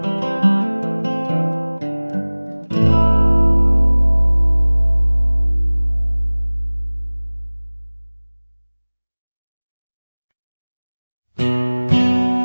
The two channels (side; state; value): both; inverted; correlation -1.00